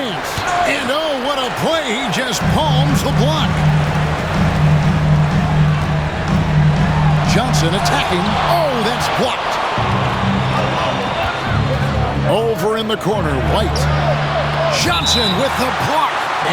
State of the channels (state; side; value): identical; both; correlation 1.00